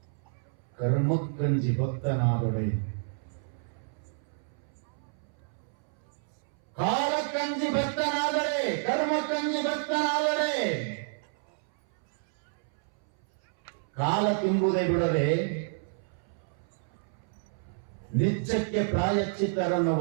ಕರ್ಮಕ್ಕಂಜಿ ಭಕ್ತನಾದೊಡೆ ಕಾಲಕ್ಕಂಜಿ ಭಕ್ತನಾದರೆ ಕರ್ಮಕ್ಕಂಜಿ ಭಕ್ತನಾದರೆ ಕಾಲ ತುಂಬುವುದೇ ಬಿಡದೆ ನಿತ್ಯಕ್ಕೆ ಪ್ರಾಯಶ್ಚಿತ್ತರನ್ನು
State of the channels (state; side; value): silent; left; 58 dB below the other